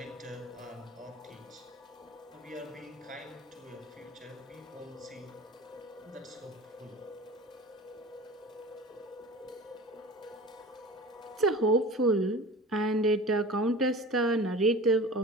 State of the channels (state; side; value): normal; both; correlation 0.37